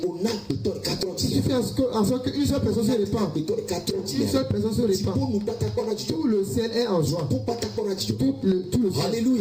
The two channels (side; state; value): both; identical; correlation 1.00